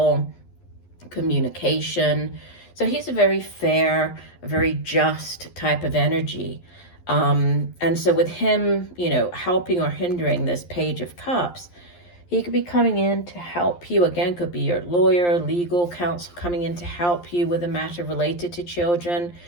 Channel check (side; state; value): right; late; 11 ms